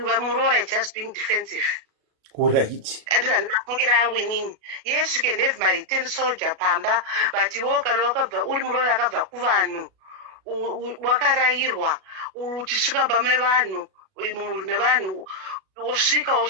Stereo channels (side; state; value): left; late; 37 ms